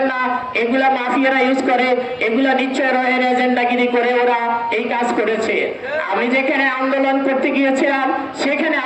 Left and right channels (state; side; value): identical; both; correlation 1.00